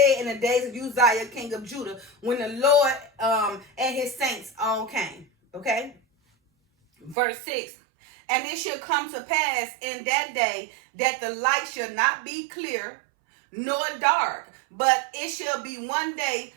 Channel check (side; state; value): left; drops out; at 7.2 s